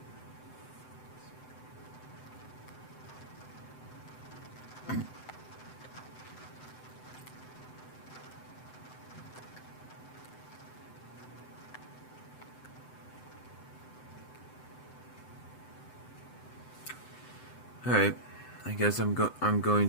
Alright, I guess I'm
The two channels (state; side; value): late; right; 7.8 ms